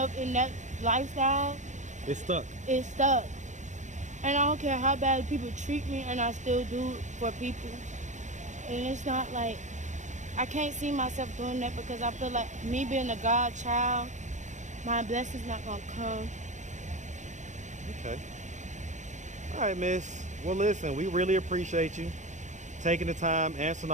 in that lifestyle, it's stuck. It's stuck. And I don't care how bad people treat me, and I still do it for people. And it's not like, I can't see myself doing that because I feel like me being a God child, my blessing's not gonna come. Okay. All right, miss. Well, listen, we really appreciate you taking the time, answering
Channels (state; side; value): late; left; 0.35 ms